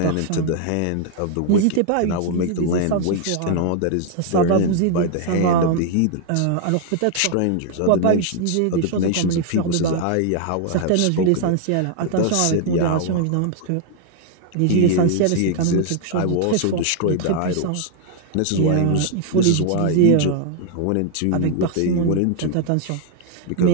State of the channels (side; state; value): both; different; correlation 0.00